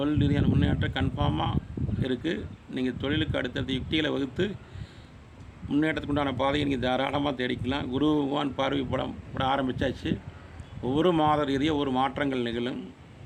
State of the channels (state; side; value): identical; both; correlation 1.00